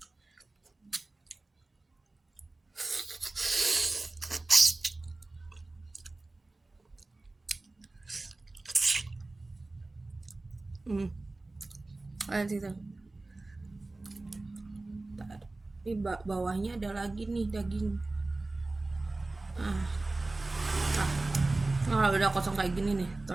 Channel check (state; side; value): quieter; left; 3.1 dB